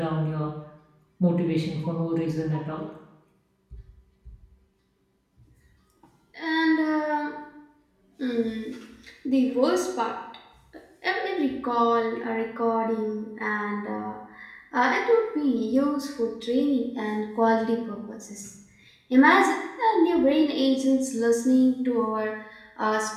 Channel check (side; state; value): both; identical; correlation 1.00